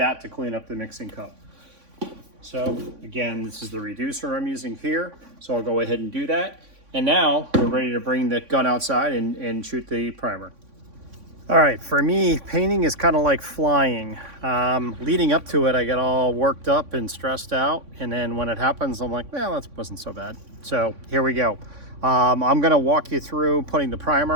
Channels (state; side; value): late; left; 3.5 ms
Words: to clean up the mixing cup. So again, this is the reducer I'm using here. So I'll go ahead and do that. And now we're ready to bring the gun outside and shoot the primer. All right, for me, painting is kind of like flying. Leading up to it, I get all worked up and stressed out. And then when it happens, I'm like, well, that wasn't so bad. So here we go. I'm gonna walk you through putting the